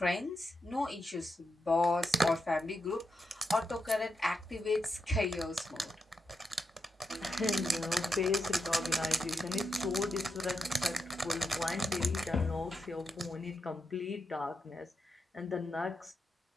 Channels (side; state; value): both; normal; correlation 0.86